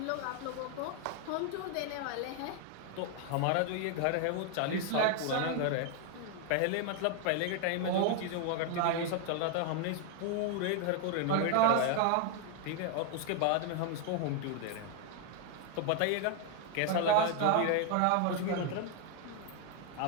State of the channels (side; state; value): both; different; correlation 0.00